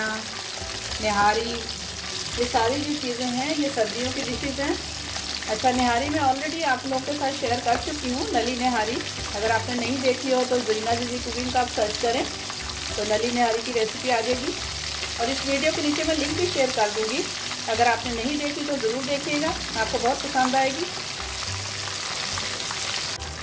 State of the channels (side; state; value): both; identical; correlation 1.00